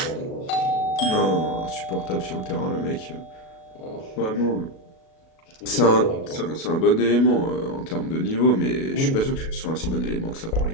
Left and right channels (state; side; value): late; right; 37 ms